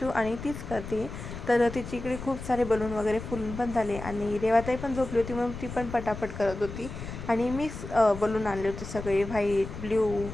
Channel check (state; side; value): noise; left; rumble, 10 dB below the sound